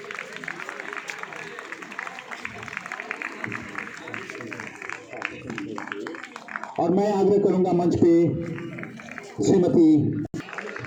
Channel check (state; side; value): identical; both; correlation 1.00